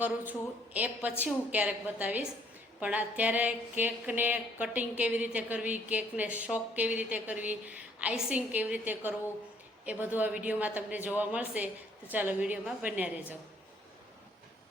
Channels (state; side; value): normal; both; correlation 0.63